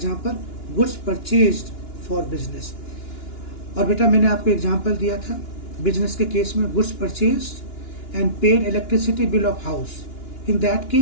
goods purchased for business. और बेटा मैंने आपको example दिया था बिजनेस के केस में, goods purchased and paid electricity bill of house. In that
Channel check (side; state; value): right; late; 2.9 ms